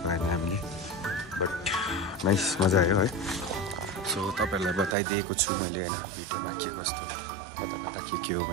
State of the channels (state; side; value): drops out; left; at 5.0 s